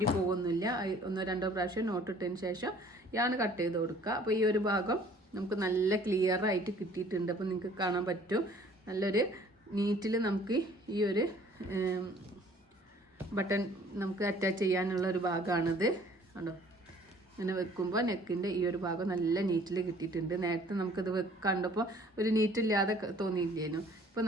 പോകുന്നില്ല. 1-2 പ്രാവശ്യം നോട്ട് ഇട്ടതിന് ശേഷം യാണ് കട്ട് ചെയ്ത് കൊടുക്കുക. അപ്പോൾ ഈ ഒരു ഭാഗം നമുക്ക് നല്ല ക്ലിയർ ആയിട്ട് കിട്ടിയിട്ടുണ്ട്. അപ്പോൾ നിങ്ങൾക്ക് കാണാൻ പറ്റും നല്ലൊരു നീറ്റിൽ നമുക്ക് ഈ ഒരു ബട്ടൺ നമുക്ക് അറ്റാച്ച് ചെയ്യാനുള്ള ഒരു ഭാഗമാണിത് കണ്ടോ. ഇങ്ങനെ വെക്കുമ്പോൾ നെക്കിൻ്റെ ഈ ഒരു ഭാഗം നല്ല നീറ്റിൽ കിട്ടിയിട്ടുണ്ട്. നേരത്തെ നമുക്കത് കണ്ടപ്പോൾ ഒരു നീറ്റില്ലാതെ തോന്നിയില്ലേനു, ഇപ്പോൾ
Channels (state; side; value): normal; both; correlation 0.54